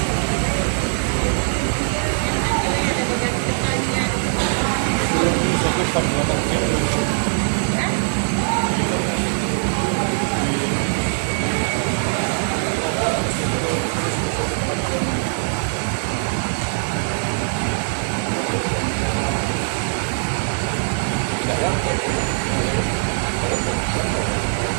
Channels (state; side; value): silent; left; digital silence